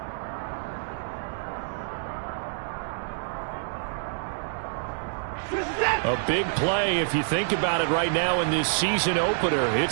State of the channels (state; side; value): silent; left; 60 dB below the other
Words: big play if you think about it right now in this season opener.